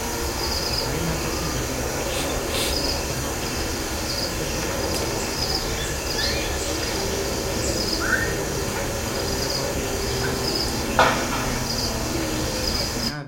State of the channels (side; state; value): both; identical; correlation 1.00